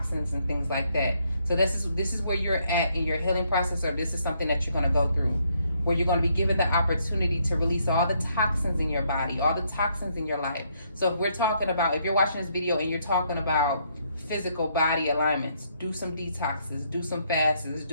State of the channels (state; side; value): inverted; both; correlation -0.72